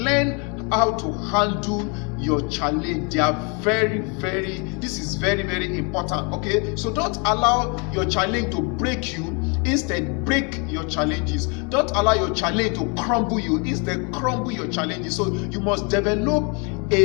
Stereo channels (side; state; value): right; quieter; 33.7 dB